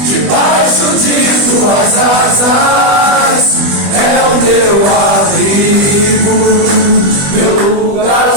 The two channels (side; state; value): left; late; 20 ms